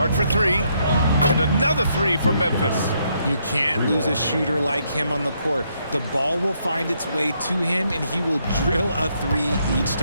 for 3. And another 3 for Memphis. You can't lose a shooter like him on the court. The ball will find its way to him, and he will drill a 3 each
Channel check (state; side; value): inverted; both; correlation -0.74